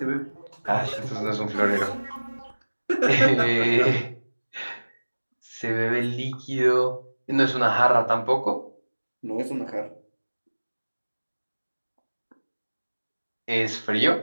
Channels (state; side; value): inverted; both; correlation -1.00